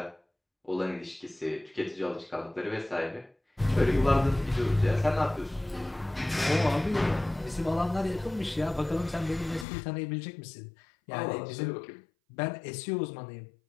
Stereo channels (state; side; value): drops out; right; at 9.7 s